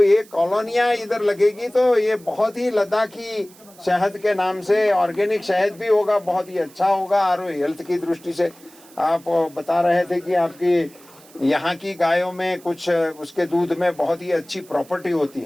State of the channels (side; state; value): right; noise; hiss, 24 dB below the sound